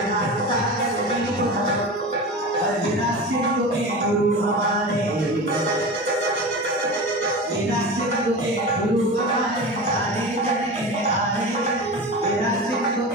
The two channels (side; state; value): both; normal; correlation 0.29